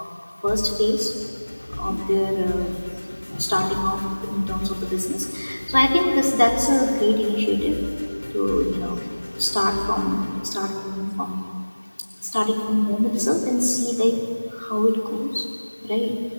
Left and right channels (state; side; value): inverted; both; correlation -1.00